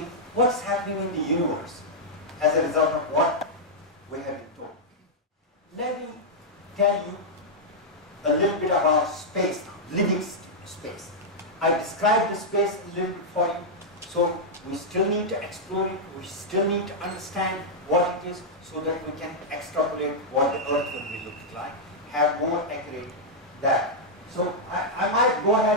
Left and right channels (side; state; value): both; normal; correlation -0.07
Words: what's happening in the universe as a result of what we have been told. Let me tell you a little bit about space now, living space. I described the space a little bit for you. So we still need to explore it, we still need to understand what it is so that we can extrapolate what the Earth will be looking like, have more accurate data. So I might go